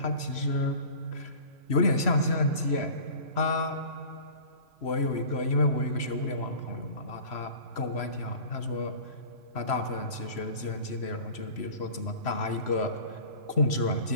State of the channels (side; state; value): right; late; 3.0 ms